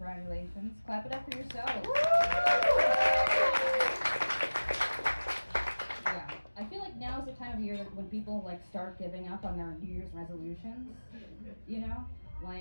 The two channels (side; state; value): both; inverted; correlation -1.00